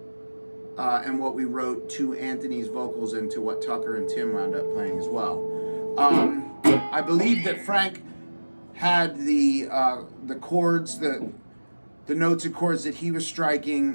and what we wrote to Anthony's vocals and to what Tucker and Tim wound up playing as well. I believe that Frank had the chords, the notes and chords that he was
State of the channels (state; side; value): inverted; both; correlation -1.00